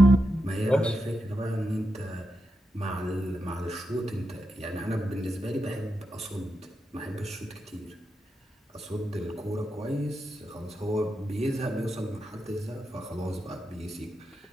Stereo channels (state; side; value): normal; both; correlation 0.87